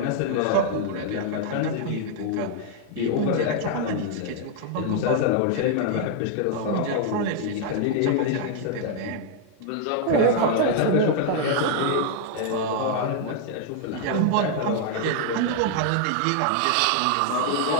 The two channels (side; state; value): both; different; correlation 0.00